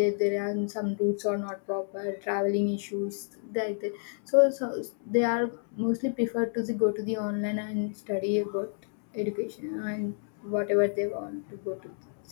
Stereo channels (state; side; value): silent; right; digital silence